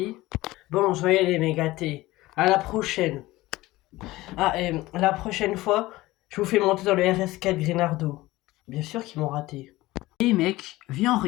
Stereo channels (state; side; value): quieter; right; 18.5 dB